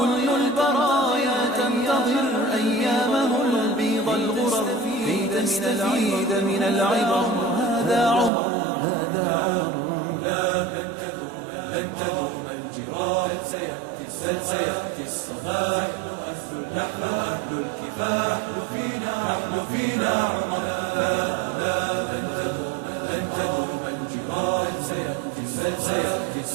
البرايا تنتظر أيامه البيض الغرر كي تستفيد من العبر هذا عمر هذا عمر لا لن تدوم الجراح بل سيأتي الصباح نحن أهل الكفاح نحن فينا عمر لا لن تدوم الجراح بل سيأتي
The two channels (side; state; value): left; drops out; at 8.3 s